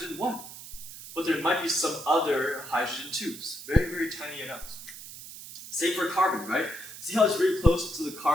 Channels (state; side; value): noise; right; hiss, 13 dB below the sound